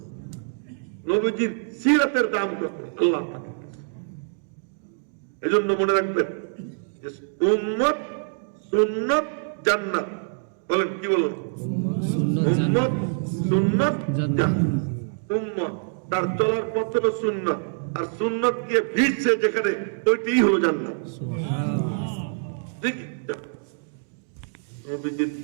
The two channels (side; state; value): left; silent; digital silence